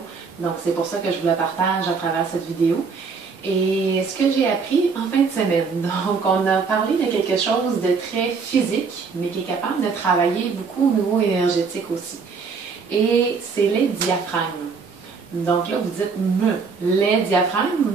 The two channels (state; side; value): quieter; left; 5.2 dB